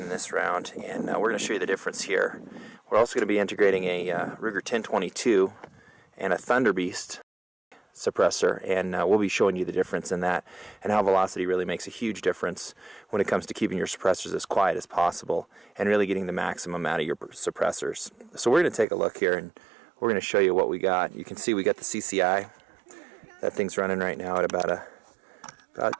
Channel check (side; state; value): left; drops out; at 18.9 s